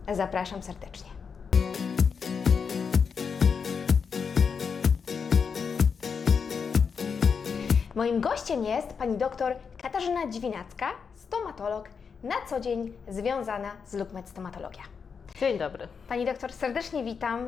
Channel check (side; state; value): right; quieter; 6.0 dB